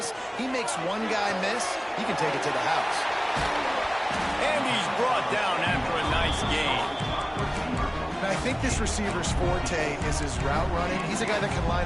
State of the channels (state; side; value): identical; both; correlation 1.00